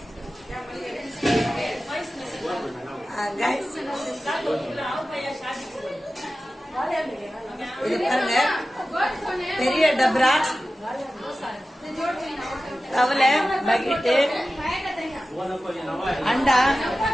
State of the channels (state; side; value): normal; both; correlation 0.95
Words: கைஸ் இது பாருங்க, பெரிய டப்ரா, கவலை, பக்கெட்டு, அண்டா,